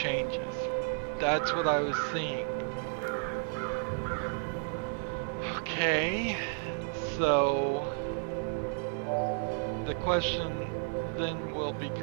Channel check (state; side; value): silent; left; 56 dB below the other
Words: That's what I was seeing. Okay, so the question then will